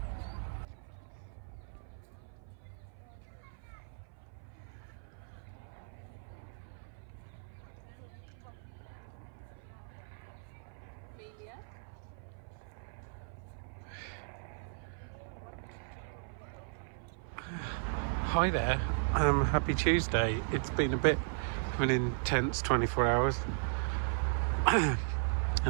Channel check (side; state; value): left; silent; 53 dB below the other